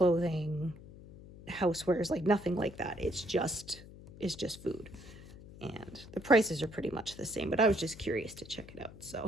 housewares, like nothing like that. It's just food, and the prices are pretty much the same, but I was just curious to check it out.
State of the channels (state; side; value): noise; left; hum, 17 dB below the sound